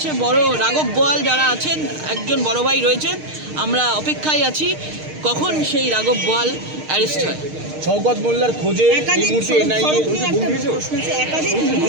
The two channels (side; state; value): left; late; 6.5 ms